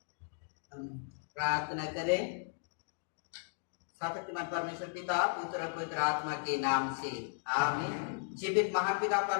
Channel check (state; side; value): silent; right; digital silence